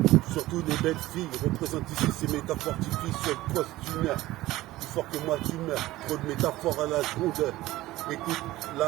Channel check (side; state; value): left; quieter; 17.0 dB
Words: surtout les belles filles, représente ici ces métaphores typiques sur le poste d'une heure, plus fort que moi tu meurs, trop de métaphores à la seconde. Écoute,